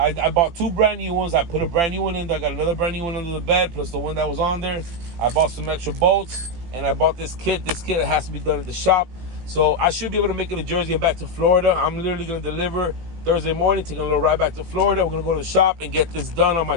bought 2 brand new ones. I put a brand new one in there. I got another brand new one under the bed, plus the one that was on there. I bought some extra bolts, and I bought this kit. This kit has to be done at the shop. So I should be able to make it to Jersey and back to Florida. I'm literally going to deliver Thursday morning, taking a little ride back to Florida. We're going to go to the shop and get this done on my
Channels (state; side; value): late; left; 18 ms